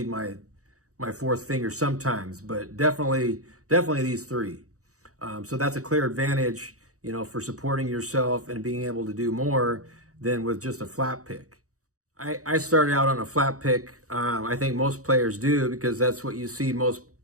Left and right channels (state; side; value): late; left; 0.65 ms